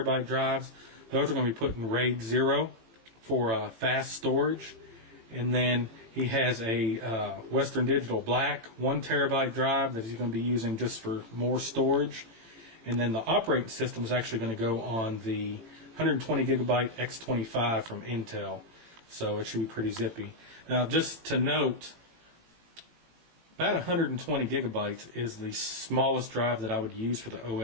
drives. Those are going to be put in RAID 0 for fast storage. And then he has a Western Digital Black 1 terabyte drive that he's going to be using just for more storage. And then the operating system is actually going to go on the 120 gigabyte X25 from Intel. So it should be pretty zippy. Now just to note, about 120 gigabytes is the smallest drive that I would use for the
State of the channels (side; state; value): left; late; 18 ms